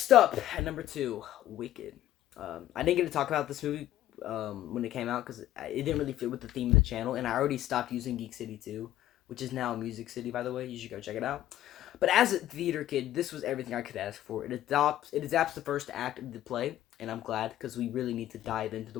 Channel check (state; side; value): quieter; right; 13.2 dB